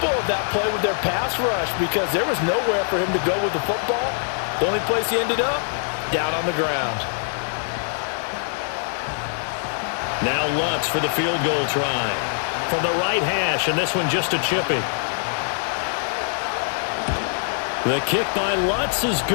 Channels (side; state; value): right; silent; 63 dB below the other